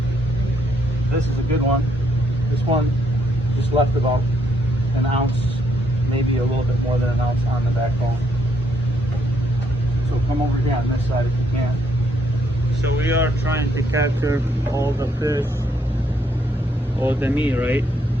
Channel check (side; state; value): both; normal; correlation 0.72